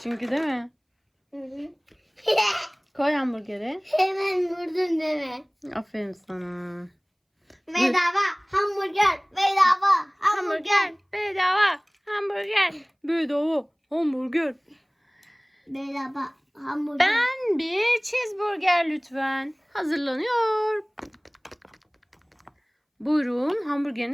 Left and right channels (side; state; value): both; identical; correlation 1.00